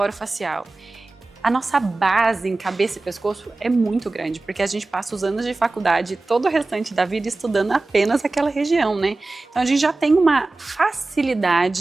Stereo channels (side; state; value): left; quieter; 3.2 dB